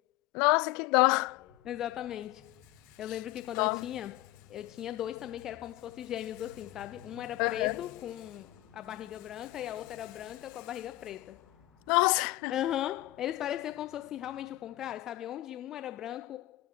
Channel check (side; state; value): right; quieter; 17.2 dB